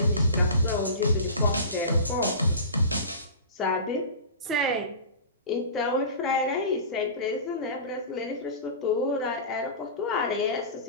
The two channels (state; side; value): inverted; both; correlation -0.32